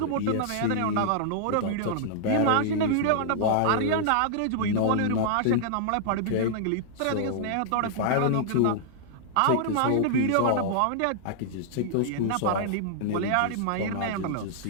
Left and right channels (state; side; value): different; both; correlation -0.01